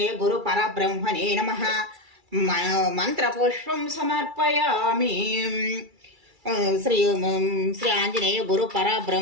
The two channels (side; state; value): left; late; 2.3 ms